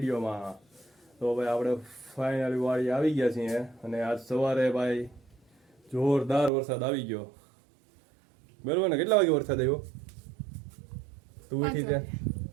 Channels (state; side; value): drops out; left; at 6.5 s